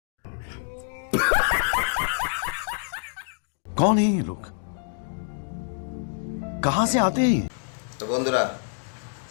कौन है ये लोग, कहां से आते हैं ये? তো বন্ধুরা,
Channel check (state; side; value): silent; right; digital silence